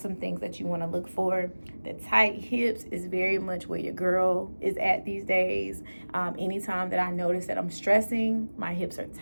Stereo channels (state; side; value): inverted; both; correlation -1.00